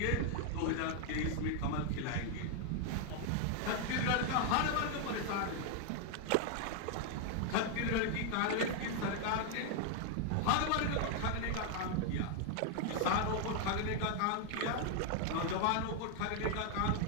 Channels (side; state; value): both; different; correlation 0.00